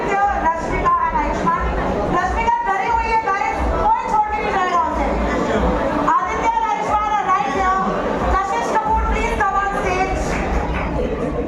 Rashmika and Ayushmann. Rashmika डरी हुई है guys, कोई छोड़ के नहीं जाएगा उसे। Aditya and Ayushmann are right here. Kashish Kapoor, please come on stage.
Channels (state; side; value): identical; both; correlation 1.00